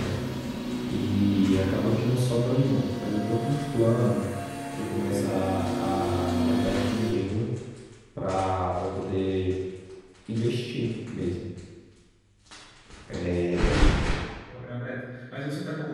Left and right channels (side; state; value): both; identical; correlation 1.00